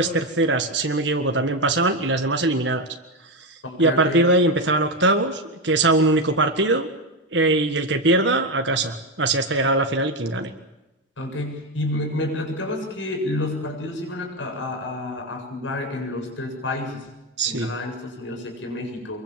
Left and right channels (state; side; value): normal; both; correlation 0.10